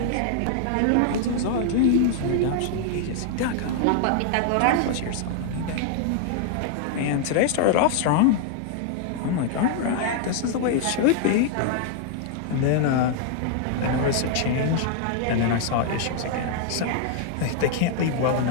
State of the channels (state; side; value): different; both; correlation 0.00